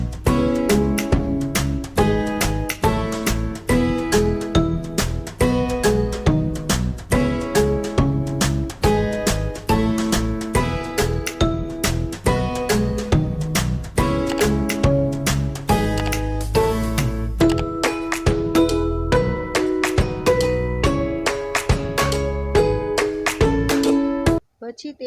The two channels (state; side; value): identical; both; correlation 1.00